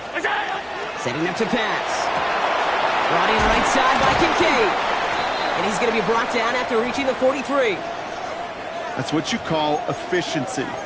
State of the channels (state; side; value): identical; both; correlation 1.00